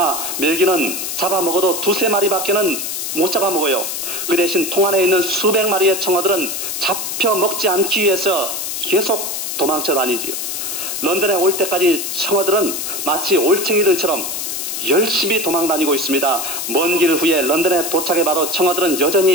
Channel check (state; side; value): noise; left; hiss, 4 dB below the sound